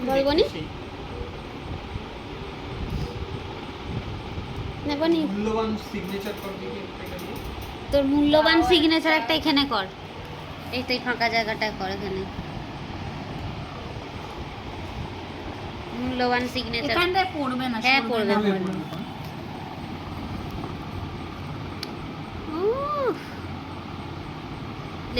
বলবো নি? নেবো নি মূল্যবান সিগনেচার করবি কি একটা দিয়ে? তোর মূল্যবান সিগনেচার একটা এখানে কর, এই তো এই ফাঁকা জায়গাটা কর এখানে মূল্যবান সিগনেচার। এখানটায় পড়বে না, হ্যাঁ, সরবে পড়বে, না। পড়বে। উফ,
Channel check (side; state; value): both; identical; correlation 1.00